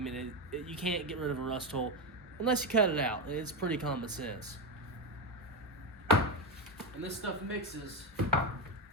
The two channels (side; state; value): both; normal; correlation 0.11